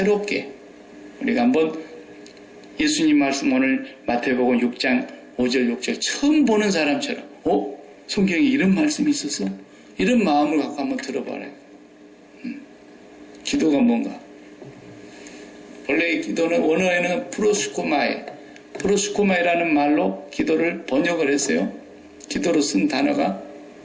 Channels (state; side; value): identical; both; correlation 1.00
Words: 우리가 한번 예수님 말씀 오늘 마태복음 6장 5절 6절 처음 보는 사람처럼 성경에 이런 말씀이 있었어? 이런 마음을 갖고 한번 들어봐라. 기도가 뭔가? 원래 기도는 원어에는 프로스코마이라는 말로 기도를 번역을 했어요. 기도로 쓴 단어가.